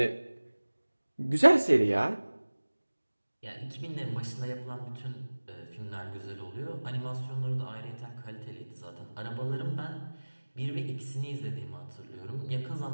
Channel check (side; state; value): both; inverted; correlation -1.00